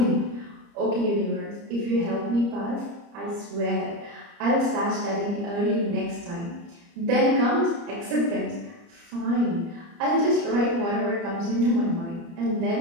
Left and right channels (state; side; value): late; left; 30 ms